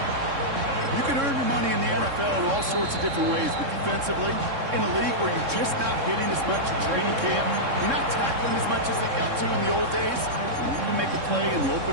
You can earn your money in the NFL in all sorts of different ways, but defensively, in a league where you're just not hitting as much in training camp, you're not tackling as much as they got to in the old days, you can make a play in the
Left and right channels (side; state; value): left; late; 3.6 ms